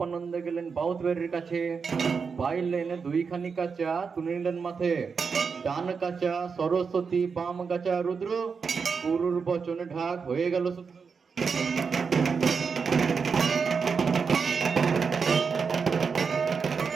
গেলেন বাউতবাড়ির কাছে, পাইলেন 2খানি কাঁচা তুলে নিলেন মাথে, ডান কাঁচা সরস্বতী বাম কাঁচা রুদ্র, গুরুর বচনে ঢাক হয়ে গেল সূত্র।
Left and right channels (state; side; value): quieter; left; 5.6 dB